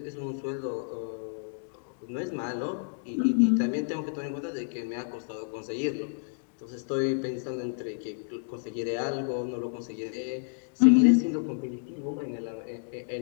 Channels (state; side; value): silent; right; digital silence